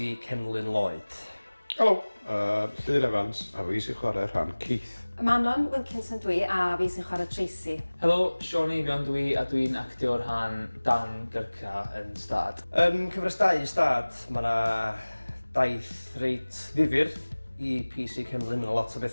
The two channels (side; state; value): both; inverted; correlation -1.00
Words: Cenlyn Lloyd. Helo, Llyr Evans, a fi sy'n chwarae'r rhan Keith. Manon Wilkinson dwi, a fi sy'n chwarae Tracy. Helo, Sean Eifion dwi, a dwi'n actio'r rhan Dan Gyrca yn STAD. Yn cyfres 2 STAD, mae yna daith reit ddifyr i PC Cenlyn. Mae lot o